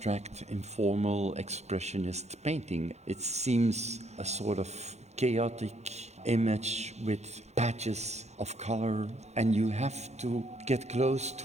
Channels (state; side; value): late; left; 0.32 ms